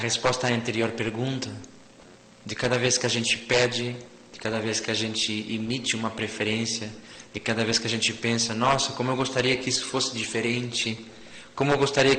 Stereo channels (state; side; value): identical; both; correlation 1.00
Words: à anterior pergunta, de cada vez que a gente pede, de cada vez que a gente emite uma preferência, de cada vez que a gente pensa, nossa, como eu gostaria que isso fosse diferente, como eu gostaria